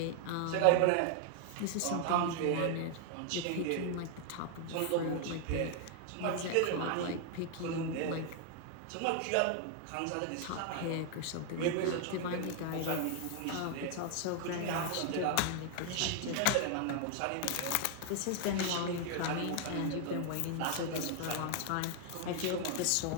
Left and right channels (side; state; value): both; different; correlation 0.00